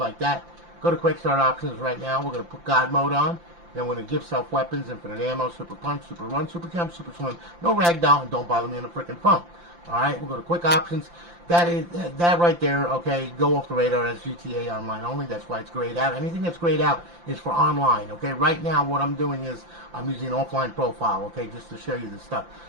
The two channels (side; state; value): left; late; 5.8 ms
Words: that. Go to quick start options right now. We're gonna put God mode on. Then we're gonna give self weapons, infinite ammo, super punch, super run, super jump, super swim. No ragdoll, and don't bother me on the freaking phone. All right, we'll go to quick options. That right there, okay, go off the radar. That's GTA Online only. That's why it's grayed out. Anything that's grayed out is for online, okay? Right now, what I'm doing is I'm using an offline profile, okay, just to show you this stuff.